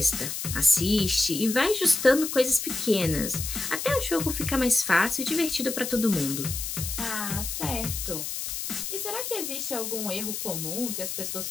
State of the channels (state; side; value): noise; left; hiss, 5 dB below the sound